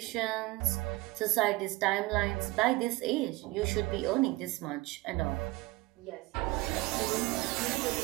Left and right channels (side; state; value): left; quieter; 21.4 dB